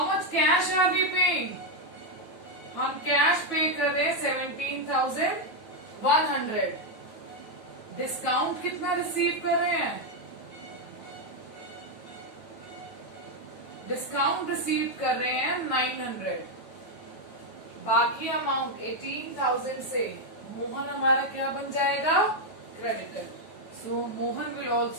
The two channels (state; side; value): late; right; 9.2 ms